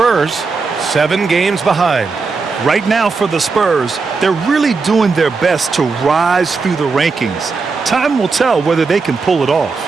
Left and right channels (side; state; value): left; quieter; 4.5 dB